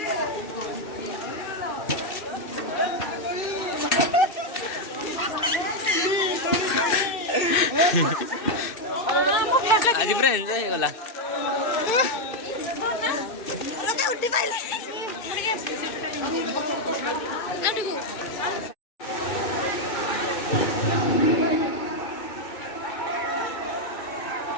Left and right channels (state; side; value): late; right; 2.6 ms